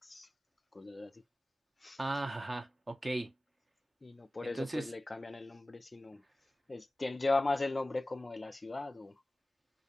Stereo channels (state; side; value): normal; both; correlation 0.97